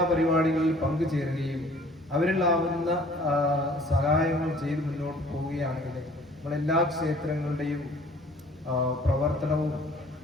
പരിപാടികളിൽ പങ്കുചേരുകയും അവരിലാവുന്ന സഹായങ്ങൾ ചെയ്ത് മുന്നോട്ട് പോവുകയാണെങ്കിൽ നമ്മളെല്ലാ ക്ഷേത്രങ്ങളുടെയും പ്രവർത്തനവും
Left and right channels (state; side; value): normal; both; correlation 0.54